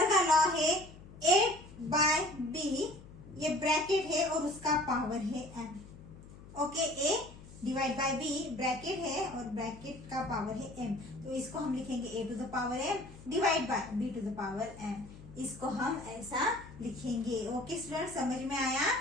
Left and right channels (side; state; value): left; noise; hum, 18 dB below the sound